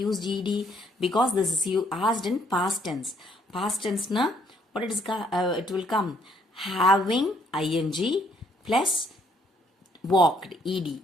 used ed? Because this is you asked in past tense. Past tense na what it will come? Having ing plus walked, ed.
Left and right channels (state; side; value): normal; both; correlation 0.68